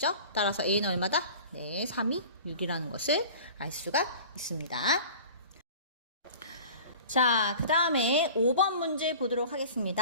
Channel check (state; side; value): inverted; both; correlation -0.41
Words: 따라서 a는 얼마다? 네, 3이 6이라는 것을 알 수가 있습니다. 자, 그 다음에 5번 문제 보도록